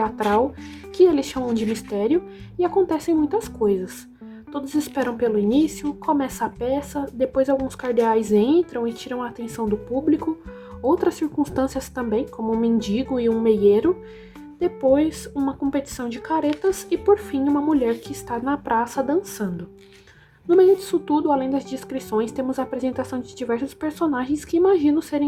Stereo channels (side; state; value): both; identical; correlation 1.00